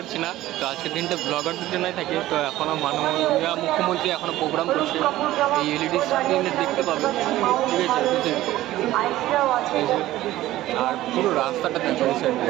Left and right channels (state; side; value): quieter; left; 15.4 dB